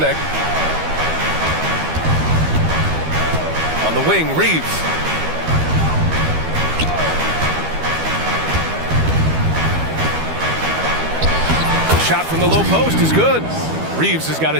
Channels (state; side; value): late; left; 12 ms